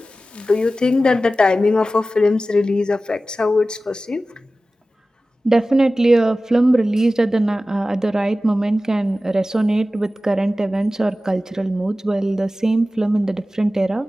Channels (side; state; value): both; normal; correlation 0.95